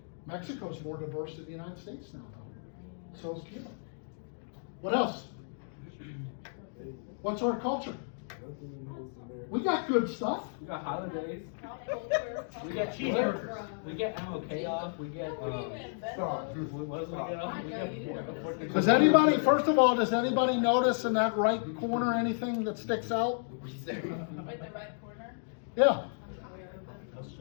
Mexico's more diverse than the United States now, though. So is Cuba. What else? What's our culture? We got good stuff. We got holidays. We get cheeseburgers. We get MLK off. We get, Stop. what else we get off? We get Does anybody, first of all, does anybody notice in that right corner anything that sticks out? Wait, the right corner? Yeah.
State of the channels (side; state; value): right; silent; digital silence